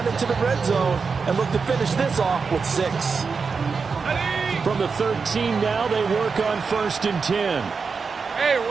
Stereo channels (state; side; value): quieter; left; 5.1 dB